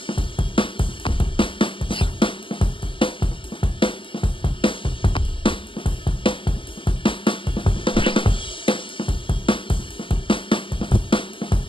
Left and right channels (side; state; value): right; late; 0.25 ms